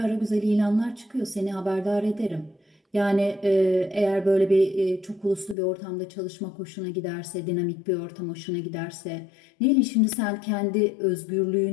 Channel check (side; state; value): right; drops out; at 5.6 s